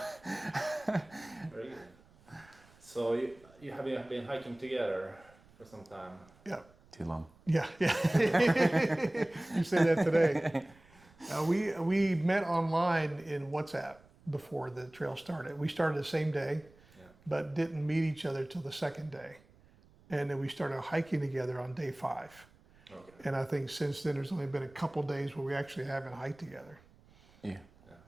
Very good. So you have been hiking together for some time? Yeah. Too long. Yeah. You say that today. We met online in WhatsApp before the trail started. We started the same day, but didn't meet each other till the second day. and then we started hiking together on day 5. Okay. And I think since then there's only been a couple days where we actually haven't hiked together. Yeah.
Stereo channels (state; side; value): noise; right; rumble, 27 dB below the sound